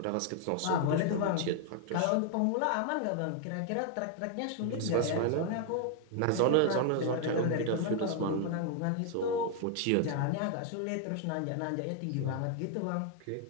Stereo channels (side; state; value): both; different; correlation 0.00